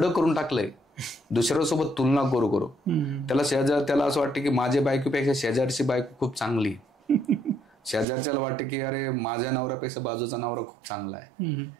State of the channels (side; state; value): left; drops out; at 8.1 s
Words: करून टाकलंय दुसऱ्यासोबत तुलना करू करू. त्याला असं वाटतं की माझ्या बायकोपेक्षा शेजारची बायको खूप चांगली, शेजारच्याला वाटतं की अरे माझ्या नवऱ्यापेक्षा बाजूचा नवरा खूप चांगला आहे,